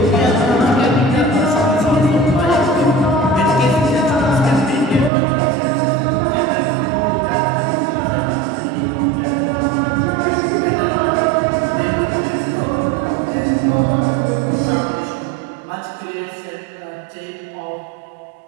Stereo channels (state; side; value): drops out; left; at 5.1 s